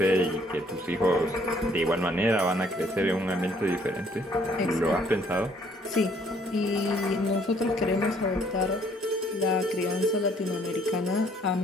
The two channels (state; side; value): normal; both; correlation 0.63